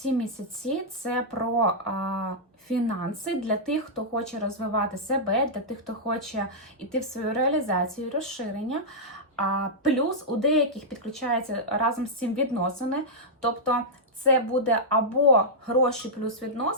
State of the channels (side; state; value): both; normal; correlation -0.09